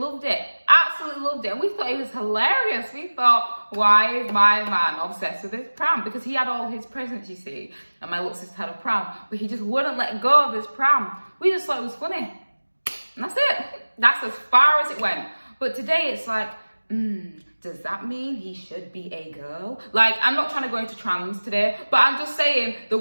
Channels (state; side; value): inverted; both; correlation -1.00